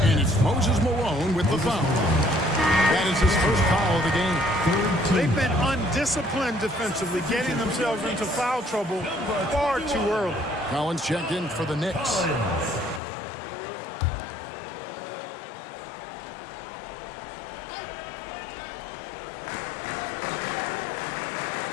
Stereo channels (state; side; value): drops out; right; at 13.0 s